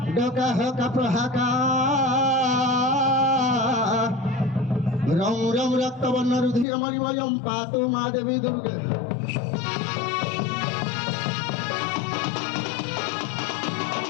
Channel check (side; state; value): right; drops out; at 6.7 s